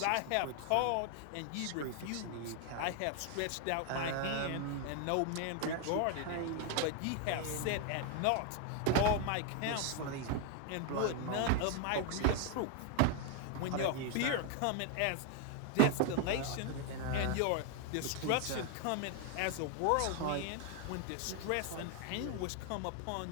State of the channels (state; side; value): different; both; correlation 0.01